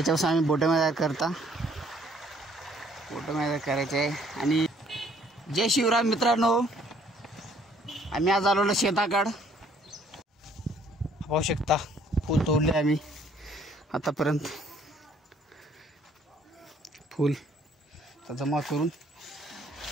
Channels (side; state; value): both; normal; correlation 0.62